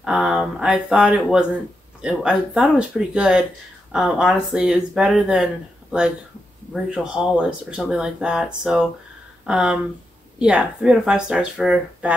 I thought it was pretty good. Honestly, it was better than like Rachel Hollis or something like that. So, yeah, 3 out of 5 stars for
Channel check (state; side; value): normal; both; correlation 0.85